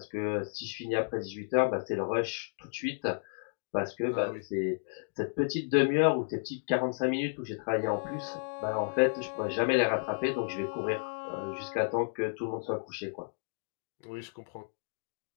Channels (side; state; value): right; silent; digital silence